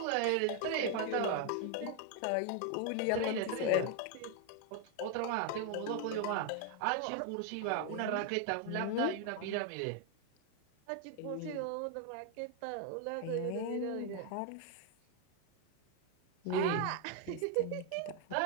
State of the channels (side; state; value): both; different; correlation 0.01